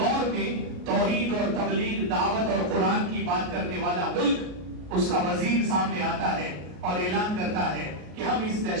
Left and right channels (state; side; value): late; left; 33 ms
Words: میں توحید اور تبلیغ، دعوت اور قرآن کی بات کرنے والا ملک، اس کا وزیر سامنے آتا ہے اور اعلان کرتا ہے کہ ہم اس